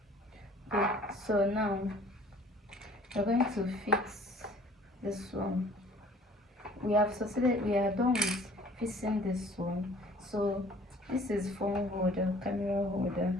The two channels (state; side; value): normal; both; correlation 0.53